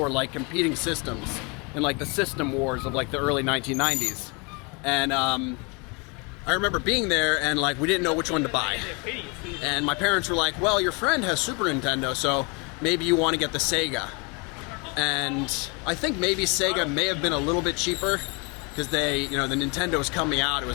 like competing systems in like the system wars of like the early 1990s. And I remember being there and like we didn't know which one to buy. And my parents were like, well, your friend has Super Nintendo, so maybe you want to get the Sega. And I think maybe Sega may have been a little bit cheaper because they, you know, the Nintendo was coming out. It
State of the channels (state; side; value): quieter; right; 30.7 dB